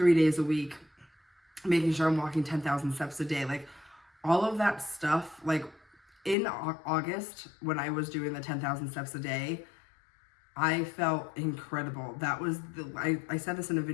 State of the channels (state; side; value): drops out; right; at 6.4 s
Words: days a week, making sure I'm walking 10,000 steps a day, like all of that stuff. Like in August, when I was doing the 10,000 steps a day, I felt incredible. That was I said this in a